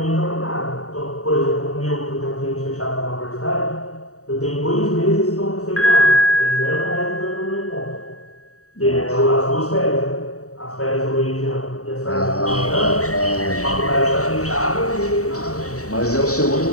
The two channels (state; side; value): late; right; 0.65 ms